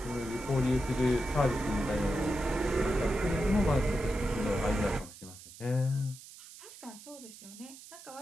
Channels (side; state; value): right; noise; hiss, 17 dB below the sound